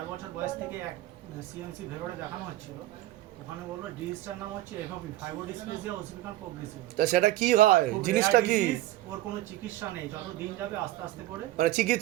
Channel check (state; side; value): quieter; left; 15.9 dB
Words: বছর বয়স থেকে এক সিএমসি ভেলোরে দেখানো হচ্ছিল। ওখানে বললো ডিজিজটার নাম হচ্ছে এফওপি, ফাইব্রোডিসপ্লেজিয়া ওসিফিকান প্রোগ্রেসিভ। তা সেটা কি হয়, জিনিসটা কি? ওর কোনো চিকিৎসা নেই, যত দিন যাবে আস্তে আস্তে করে। মানে